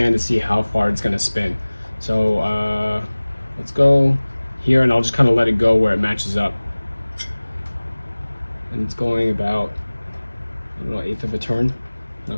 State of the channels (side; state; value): both; inverted; correlation -1.00